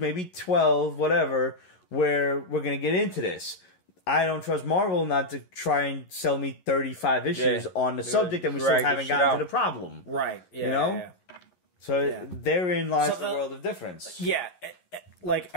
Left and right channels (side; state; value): right; late; 11 ms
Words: 12, whatever, where we're going to get into this. I don't trust Marvel not to try and sell me 35 issues on the subject that we still haven't gotten to the problem. Right. Yeah, you know? So therein lies the world of difference. Yeah. like